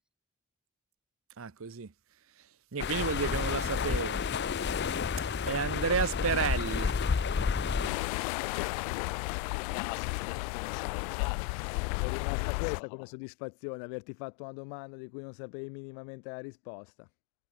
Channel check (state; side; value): drops out; right; at 7.9 s